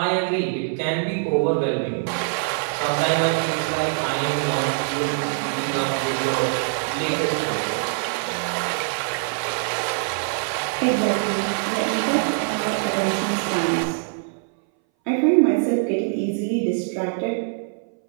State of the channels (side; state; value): left; silent; 60 dB below the other